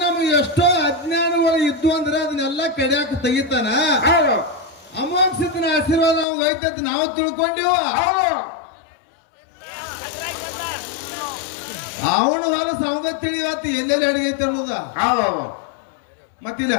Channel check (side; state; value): right; drops out; at 6.2 s